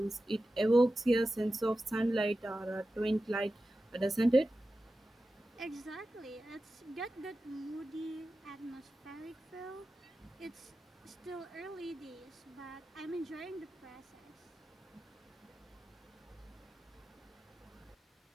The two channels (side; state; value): both; normal; correlation 0.93